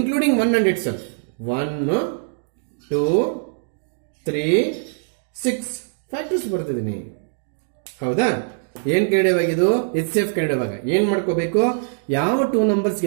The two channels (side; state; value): left; silent; digital silence